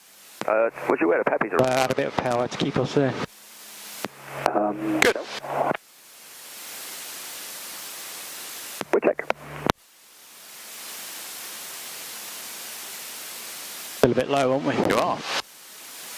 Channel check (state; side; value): identical; both; correlation 1.00